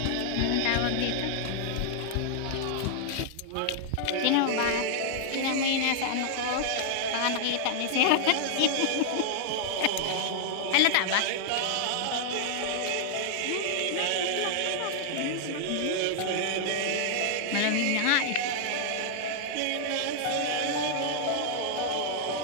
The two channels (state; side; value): different; both; correlation 0.00